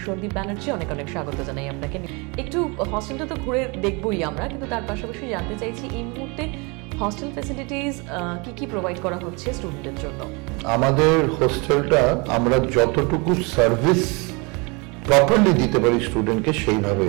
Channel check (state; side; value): quieter; left; 29.3 dB